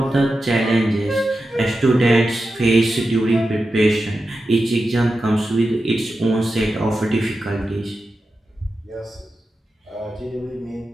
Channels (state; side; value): normal; both; correlation 0.91